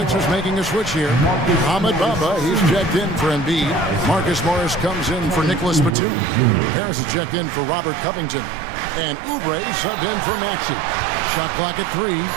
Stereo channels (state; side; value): drops out; left; at 6.0 s